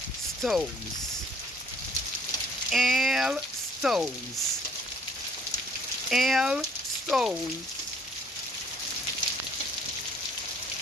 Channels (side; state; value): both; normal; correlation 0.59